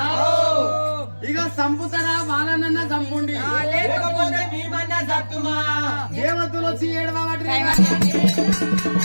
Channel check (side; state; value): both; inverted; correlation -1.00